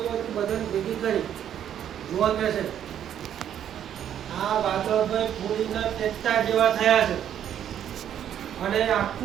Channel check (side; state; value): left; quieter; 9.9 dB